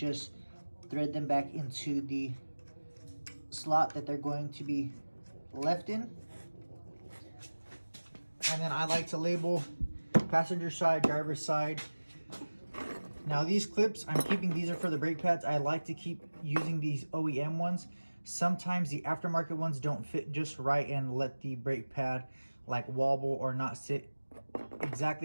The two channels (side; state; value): both; inverted; correlation -1.00